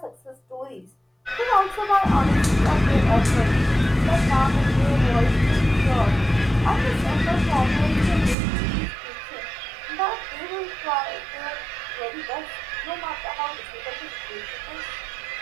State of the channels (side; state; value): left; drops out; at 8.3 s